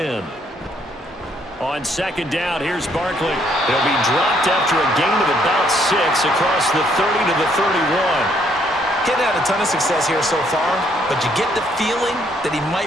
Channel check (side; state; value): both; normal; correlation 0.69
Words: On second down, here's Barkley. He'll be dropped after a gain of about 6 across the 30 to the 31. He's had a ton of success here so far, but you get the feeling that he